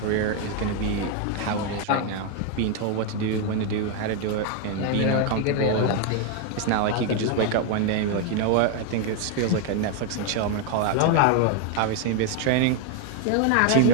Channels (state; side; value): different; both; correlation 0.01